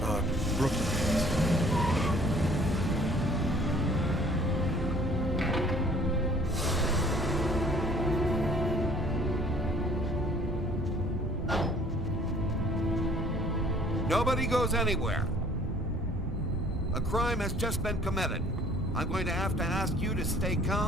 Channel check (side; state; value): both; normal; correlation 0.54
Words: Nobody goes anywhere. A crime has just been committed. I'm going to have to ask you to stay